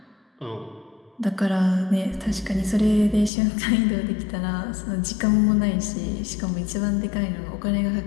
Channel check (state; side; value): drops out; right; at 3.3 s